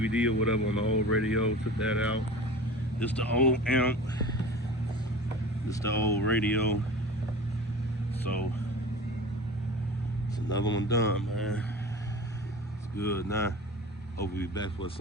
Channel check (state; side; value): normal; both; correlation 0.36